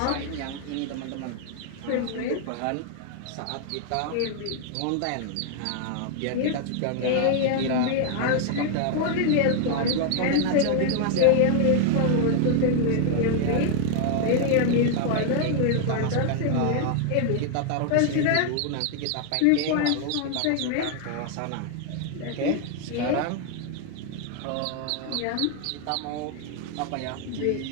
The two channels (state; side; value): different; both; correlation 0.00